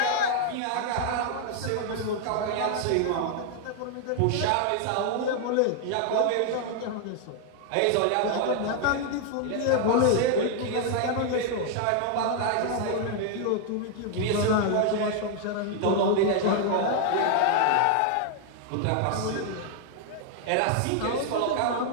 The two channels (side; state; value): both; different; correlation 0.00